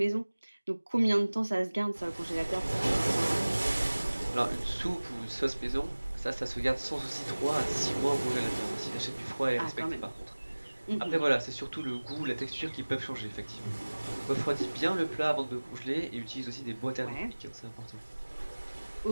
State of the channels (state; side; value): inverted; both; correlation -1.00